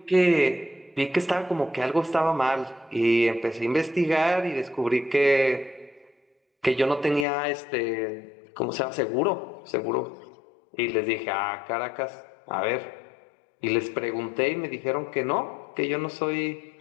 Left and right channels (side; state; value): right; drops out; at 7.2 s